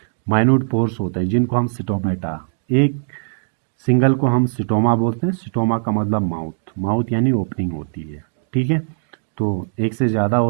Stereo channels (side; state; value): left; silent; digital silence